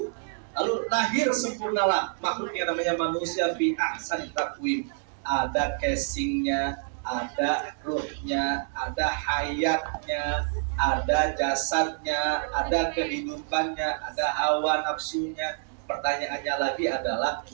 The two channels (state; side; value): silent; left; digital silence